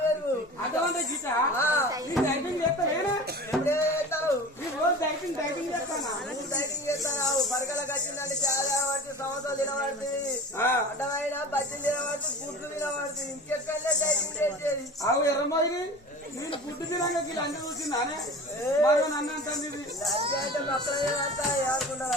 పెరుగు అర్థమంటే గిట డైటింగ్ చేస్తానేనా ఎప్పుడే చేస్తావు ఈ రోజు డైటింగ్ చేస్తానా నువ్వు డైటింగ్ చేస్తావు పరకలకు వచ్చిందంటే చాలా పడుతుంది సంవత్సరాలు తినబడుతుంది అడ్డమైన బజ్జీలు తినబడుతుంది గుడ్లు తినబడుతుంది ఇంకెక్కడలే డైటింగ్ చేసేది అవు ఎర్రమ్మాయి నేను గుడ్డు తినాక ఇలా అన్ని చూసిందానే మరి నన్ను అంటుంది అంటే మొక్కలు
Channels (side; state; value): both; normal; correlation 0.37